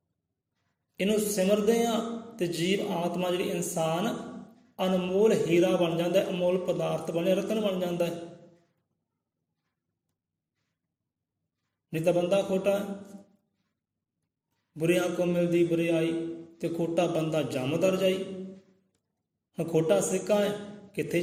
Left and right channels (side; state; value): both; identical; correlation 1.00